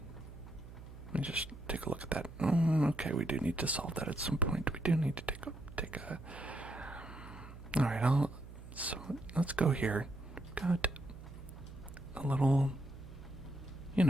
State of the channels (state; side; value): noise; right; hum, 15 dB below the sound